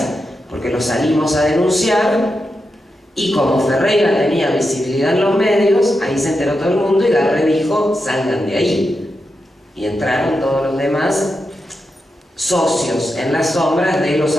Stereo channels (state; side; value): normal; both; correlation 0.87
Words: porque los salimos a denunciar. Y como Ferreira tenía visibilidad en los medios, ahí se enteró todo el mundo y Garré dijo, salgan de ahí. Y entraron todos los demás socios en las sombras de los